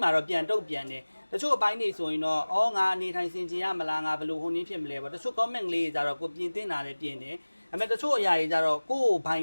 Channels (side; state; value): both; inverted; correlation -1.00